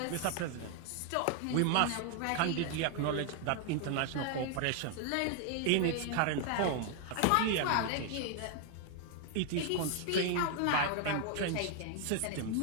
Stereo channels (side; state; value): both; different; correlation 0.00